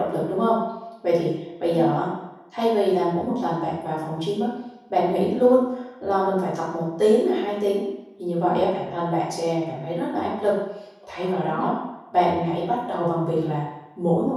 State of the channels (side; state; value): both; identical; correlation 1.00